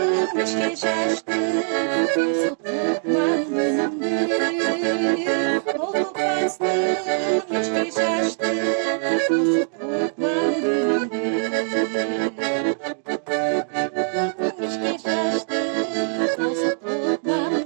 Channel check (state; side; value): silent; left; digital silence